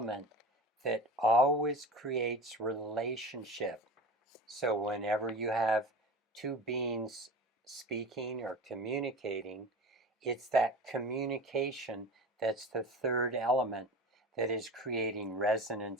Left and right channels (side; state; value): both; normal; correlation 0.33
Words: that always creates relationship. So whenever you have 2 beings speaking or communicating, it's that communication that's the third element that is creating